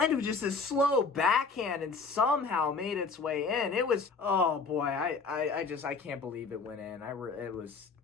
of just a slow backhand and somehow made its way in. It was, oh boy, I can't believe it went in.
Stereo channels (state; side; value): quieter; right; 4.6 dB